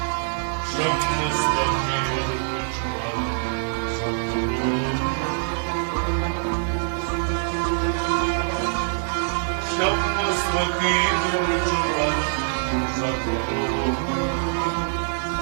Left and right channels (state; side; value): silent; left; 63 dB below the other